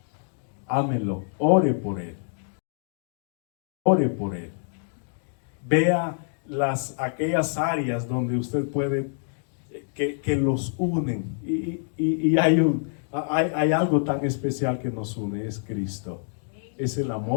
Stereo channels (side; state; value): right; silent; digital silence